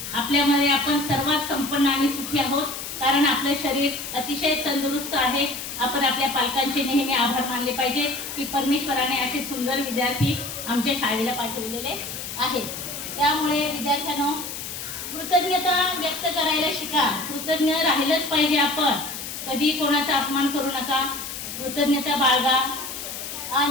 आपल्यामध्ये आपण सर्वात संपन्न आणि सुखी आहोत, कारण आपलं शरीर अतिशय तंदुरुस्त आहे. आपण आपल्या पालकांचे नेहमी आभार मानले पाहिजेत की परमेश्वराने असे सुंदर विद्यार्थी आमच्या शाळेला पाठवलेले आहेत. त्यामुळे विद्यार्थ्यांनो, कृतज्ञता व्यक्त करायला शिका. कृतज्ञ राहिलंच पाहिजे आपण. कधी कोणाचा अपमान करू नका. कृतज्ञता बाळगा.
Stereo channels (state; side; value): noise; left; hiss, 8 dB below the sound